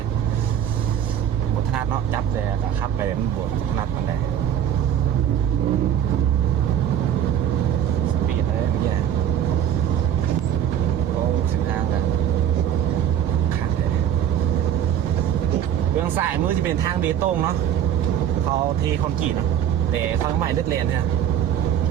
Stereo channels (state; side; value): quieter; left; 9.9 dB